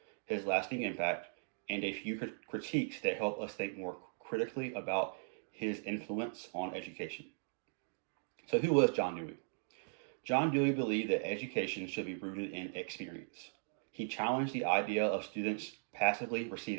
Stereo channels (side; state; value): left; silent; digital silence